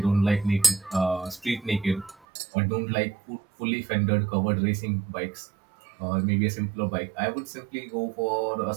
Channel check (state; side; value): drops out; left; at 2.2 s